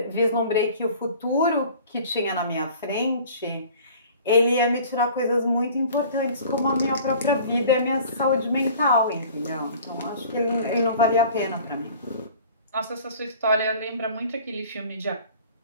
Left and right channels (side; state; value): both; inverted; correlation -0.47